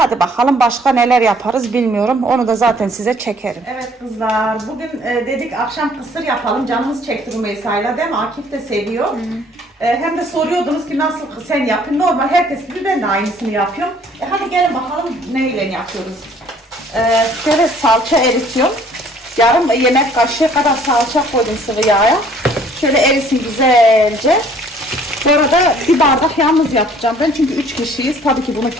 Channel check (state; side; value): normal; both; correlation 0.57